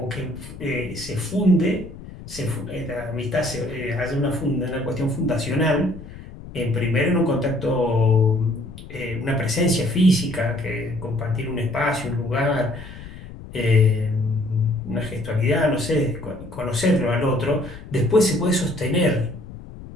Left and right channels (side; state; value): left; noise; rumble, 15 dB below the sound